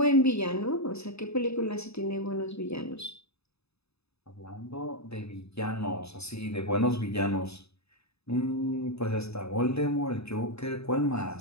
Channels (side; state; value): right; late; 0.79 ms